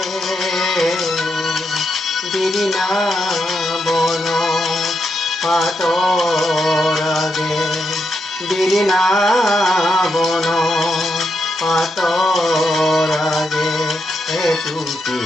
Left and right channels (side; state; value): both; normal; correlation 0.82